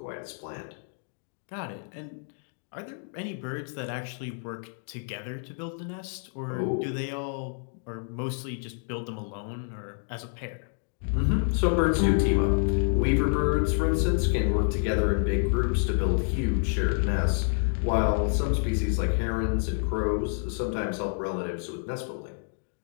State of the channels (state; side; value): silent; right; 59 dB below the other